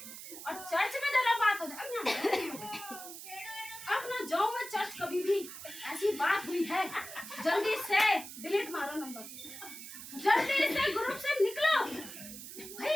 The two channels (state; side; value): noise; right; hiss, 12 dB below the sound